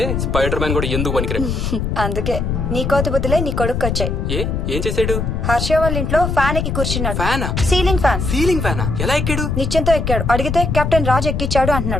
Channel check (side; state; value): left; noise; rumble, 1 dB below the sound